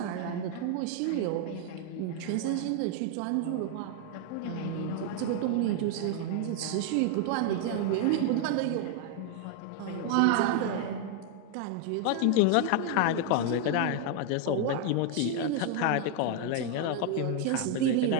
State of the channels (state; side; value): different; both; correlation 0.00